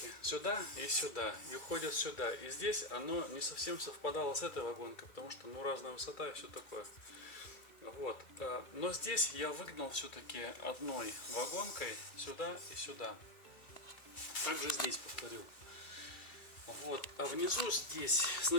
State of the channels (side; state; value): right; late; 2.4 ms